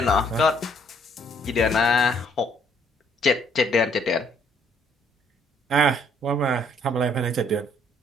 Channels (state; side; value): normal; both; correlation 0.65